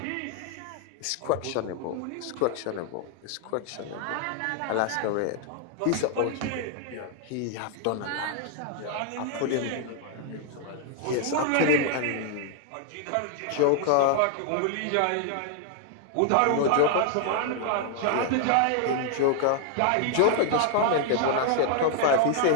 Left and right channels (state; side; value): different; both; correlation 0.00